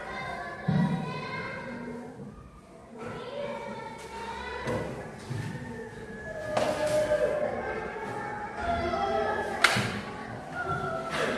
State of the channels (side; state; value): both; identical; correlation 1.00